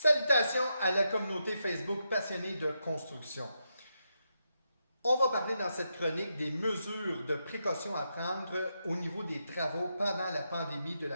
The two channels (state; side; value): inverted; both; correlation -0.84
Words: Salutations à la communauté Facebook passionnée de construction. On va parler dans cette chronique des mesures de précaution à prendre au niveau des travaux pendant la pandémie de